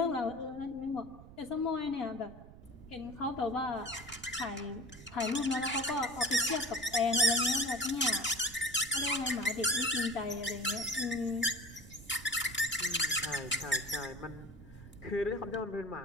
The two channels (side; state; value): right; noise; rumble, 18 dB below the sound